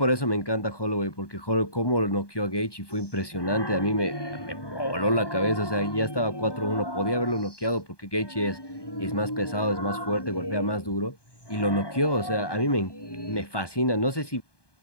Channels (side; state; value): right; late; 1.2 ms